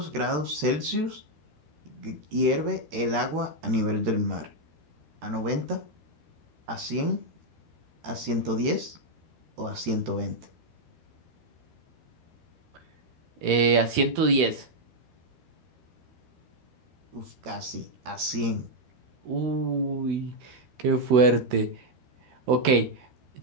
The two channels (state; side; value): late; left; 13 ms